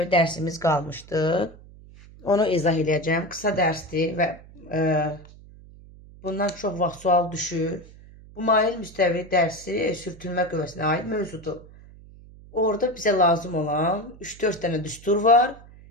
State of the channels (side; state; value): right; noise; hum, 21 dB below the sound